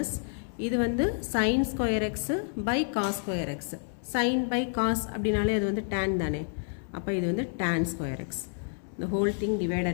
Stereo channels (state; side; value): silent; right; digital silence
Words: இது வந்து sine square x by cos square x. Sine by cos அப்படின்னாலே அது வந்து டேன் தானே, அப்போ இது வந்து tan square x. the whole thing